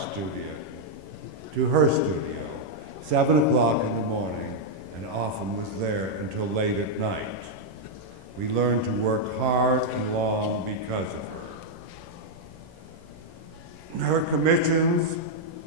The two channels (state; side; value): late; left; 11 ms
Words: to her studio, 7 o'clock in the morning, and often was there until late at night. We learned to work hard and long because of her. Her commissions